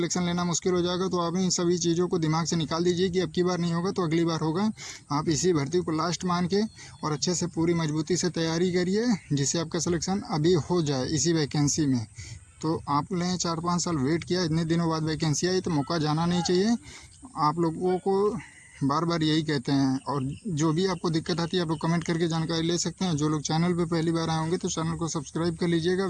लेना मुश्किल हो जाएगा। तो आप इन सभी चीज़ों को दिमाग से निकाल दीजिए कि अब की बार नहीं होगा तो अगली बार होगा। आप इसी भर्ती को लास्ट मान के और अच्छे से पूरी मजबूती से तैयारी करिए, जिससे आपका सिलेक्शन अभी हो जाए इसी वैकेंसी में। तो आपने 4-5 साल वेट किया, इतने दिनों बाद वैकेंसी आई, तो मौका जाना नहीं चाहिए। आप लोगों को बार बार यही कहते हैं। और जो भी आपको दिक्कत आती है आप लोग कमेंट करके जानकारी ले सकते हैं। जो लोग चैनल पर पहली बार आए होंगे तो चैनल को सब्सक्राइब कर लीजिएगा,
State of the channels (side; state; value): both; identical; correlation 1.00